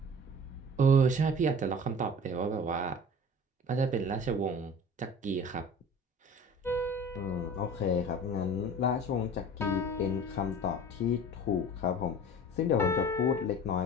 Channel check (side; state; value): both; normal; correlation 0.41